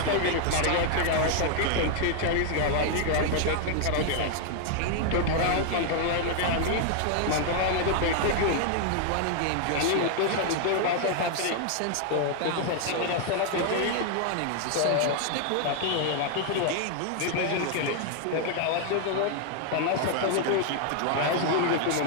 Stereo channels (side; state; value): both; different; correlation 0.00